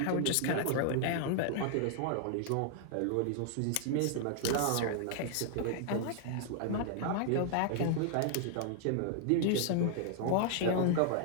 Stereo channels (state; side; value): different; both; correlation 0.00